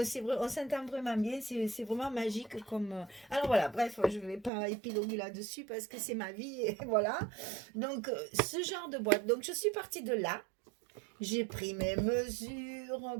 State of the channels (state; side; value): drops out; left; at 4.5 s